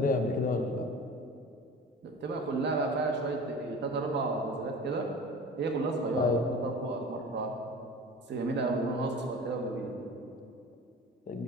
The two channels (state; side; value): normal; both; correlation 0.38